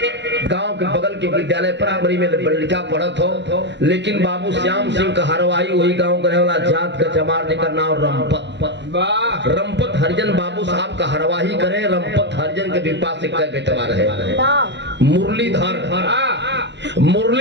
गांव के बगल के विद्यालय प्राइमरी में लड़का पढ़त हो, लेकिन बाबू श्याम सिंह का हरवाई वही गांव का वाला जात का चमार जेकर नाम रंपत हरिजन बाबू साहब का हरवाही करे। रंपत हरिजन के विपा से कई बेटवा रहे। मुरलीधर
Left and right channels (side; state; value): left; late; 0.51 ms